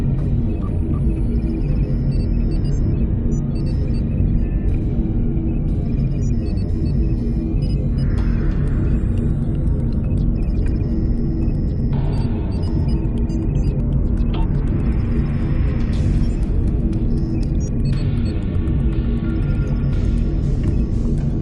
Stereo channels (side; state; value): both; identical; correlation 1.00